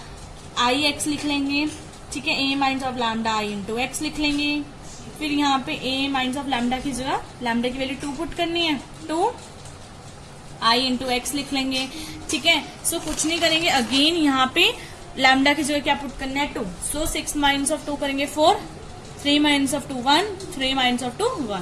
ix लिख लेंगे। ठीक है, a minus of lambda i into x लिख लेंगे। फिर यहाँ पे a माइनस ऑफ लैम्डा की जगह लैम्डा की वैल्यू 2 पुट करनी है, 2 i इंटू एक्स लिख लेंगे। ठीक है, सो कुछ नहीं करेंगे, अगेन यहाँ पे लैम्डा की जगह क्या पुट करना है, 2। सो 6 माइनस ऑफ 2 करेंगे 4, 3 माइनस ऑफ 2 1, 3 माइनस ऑफ 2 1।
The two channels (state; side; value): identical; both; correlation 1.00